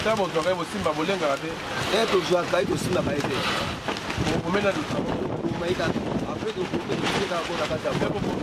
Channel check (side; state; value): both; identical; correlation 1.00